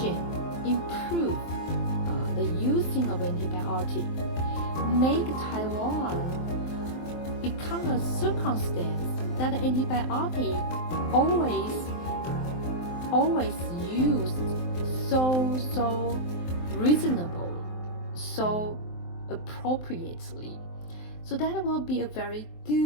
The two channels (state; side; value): late; right; 23 ms